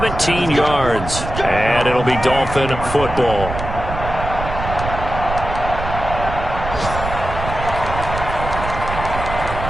yards. And it'll be Dolphin football.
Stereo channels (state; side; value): noise; right; rumble, 7 dB below the sound